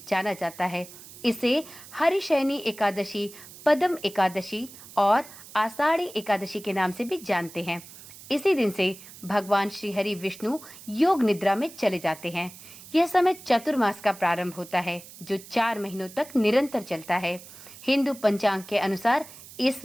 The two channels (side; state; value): right; noise; hiss, 18 dB below the sound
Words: जाना जाता है। इसे हरिशयनी एकादशी, पद्म एकादशी और आषाढ़ी एकादशी के नाम से भी जानते हैं। इसी दिन से भगवान श्री हरि विष्णु योग निद्रा में चले जाते हैं। यह समय चतुर्मास का प्रारंभ होता है जो 4 महीनों तक निरंतर चलता है। हिंदू पंचांग के अनुसार इस